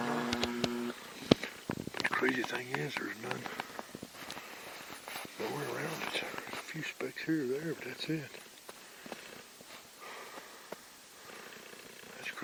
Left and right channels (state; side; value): identical; both; correlation 1.00